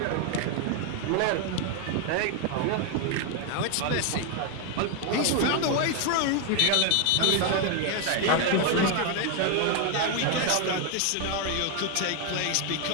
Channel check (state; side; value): different; both; correlation 0.01